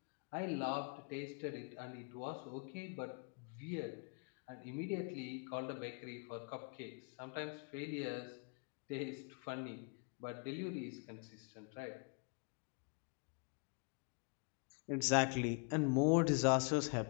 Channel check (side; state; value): right; quieter; 36.8 dB